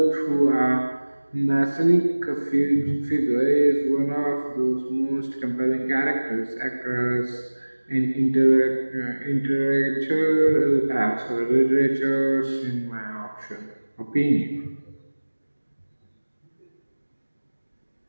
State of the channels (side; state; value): both; inverted; correlation -1.00